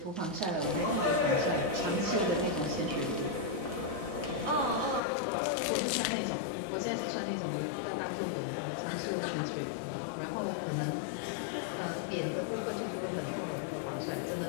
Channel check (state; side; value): drops out; right; at 5.0 s